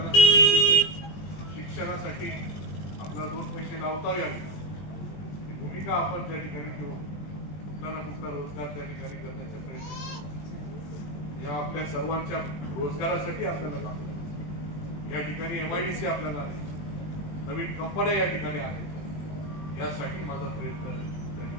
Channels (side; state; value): right; late; 20 ms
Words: शिक्षणासाठी आपल्याला 2 पैसे लावता यावे. ही भूमिका आपण त्या ठिकाणी घेऊन कुठला ना कुठला रोजगार त्या ठिकाणी करण्याचा प्रयत्न. या आपल्या सर्वांच्या रोजगारासाठी आपल्याला काम करायचं. या ठिकाणी MIDC आपल्याला आहे, नवीन कंपन्या या ठिकाणी आहेत. यासाठी माझा प्रयत्न त्या